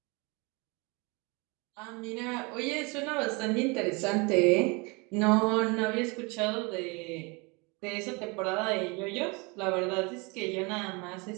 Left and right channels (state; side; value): quieter; left; 28.7 dB